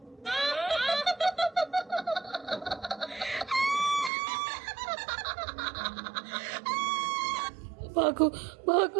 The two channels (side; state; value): left; drops out; at 4.1 s